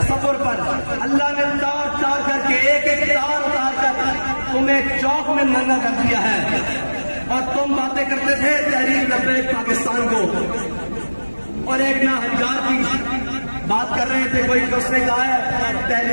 پر اللہ نے تار تار کر کے ایک ایک تار اتار کر تمہیں چوک میں ننگا کر دیا ہے. اور تم باتیں کرتے تھے تحریک لبیک پاکستان کو, اور ایک نہ ہزار کی بات کر رہے تھے کوئی, اس نے کہا ہے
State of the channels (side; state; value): both; inverted; correlation -1.00